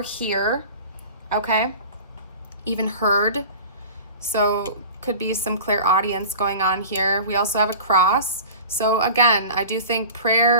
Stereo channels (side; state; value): both; inverted; correlation -0.38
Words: hear. Okay, even heard. So could be some clairaudience going on here. We also have a cross. So again, I do think